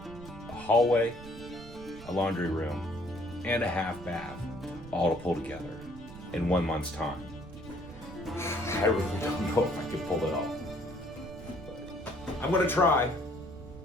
hallway, a laundry room, and a half bath, all to pull together in 1 month's time. I really don't know if I can pull it off. But I'm going to try.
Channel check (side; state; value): right; noise; rumble, 15 dB below the sound